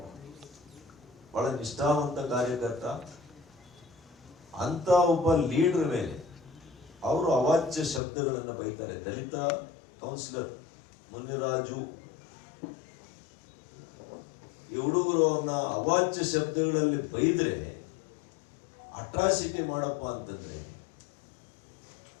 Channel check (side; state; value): right; drops out; at 8.0 s